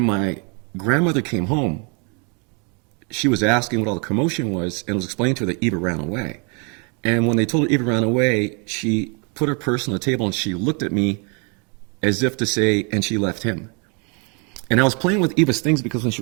my grandmother came home, she was asking what all the commotion was, and it was explained to her that Eva ran away. And when they told her Eva ran away, she put her purse on the table and she looked at me as if to say, and she left him. And I was playing with Eva's things because when she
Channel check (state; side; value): quieter; left; 35.4 dB